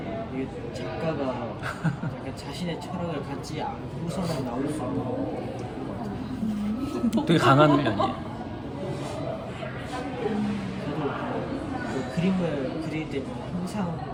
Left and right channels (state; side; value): identical; both; correlation 1.00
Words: 이게 작가가 약간 자신의 철학을 갖지 않고서는 나올 수 없는 되게 강한 훈련이에요. 저도 그 그림을 그릴 때는 항상